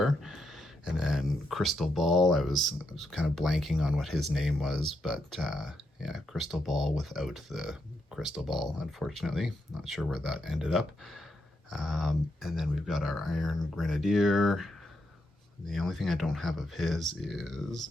And then Crystal Ball, I was kind of blanking on what his name was, but yeah, Crystal Ball without the crystal ball, unfortunately. Not sure where that ended up. And then we've got our Iron Grenadier. The only thing I don't have of his is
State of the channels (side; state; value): both; normal; correlation 0.81